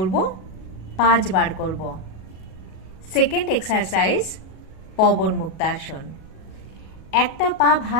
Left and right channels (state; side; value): late; right; 37 ms